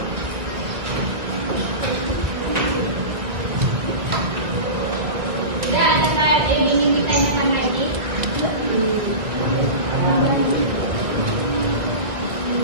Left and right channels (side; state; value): left; late; 1.7 ms